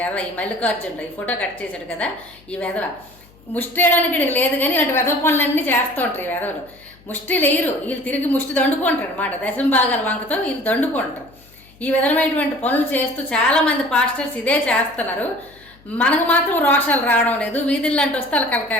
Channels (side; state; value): left; noise; hum, 27 dB below the sound